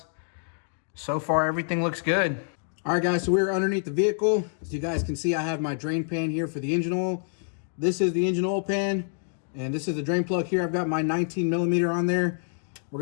So far, everything looks good. All right, guys, so we're underneath the vehicle. As you guys can see, I have my drain pan here for the engine oil. This is the engine oil pan, and this is the drain plug here. I've got my 19mm on there. What we're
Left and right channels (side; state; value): right; silent; digital silence